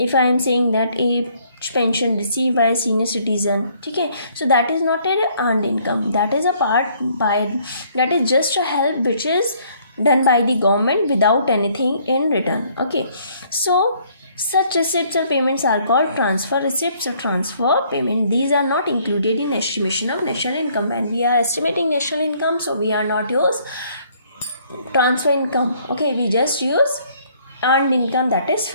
I am saying that a pension received by a senior citizen, okay, so that is not an earned income, that is a part by, that is just a help which is done by the government without anything in return. Okay, so such receipts or payments are called transfer receipts or transfer payment. These are not included in estimation of national income. When we are estimating national income, so we are not use transfer income. Okay, we just use earned income, that is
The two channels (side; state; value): both; inverted; correlation -0.63